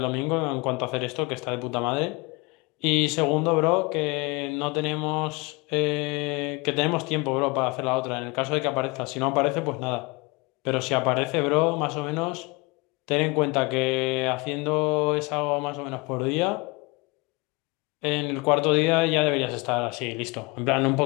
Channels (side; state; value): right; quieter; 26.5 dB